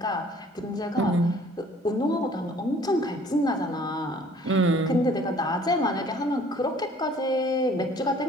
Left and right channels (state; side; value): normal; both; correlation 0.55